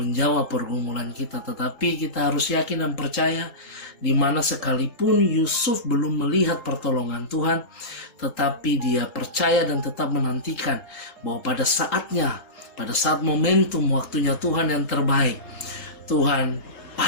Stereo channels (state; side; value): late; right; 4.7 ms